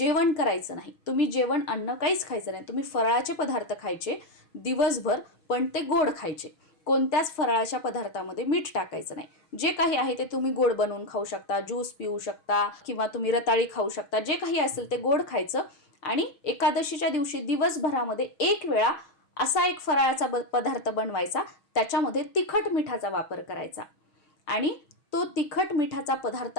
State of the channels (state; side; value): late; right; 6.3 ms